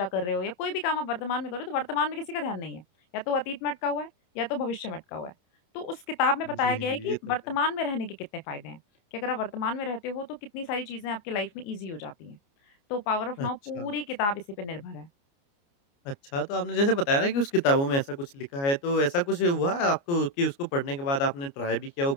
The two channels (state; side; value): late; right; 29 ms